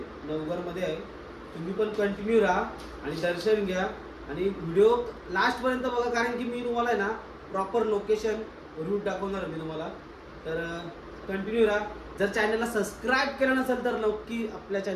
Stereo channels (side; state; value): both; identical; correlation 1.00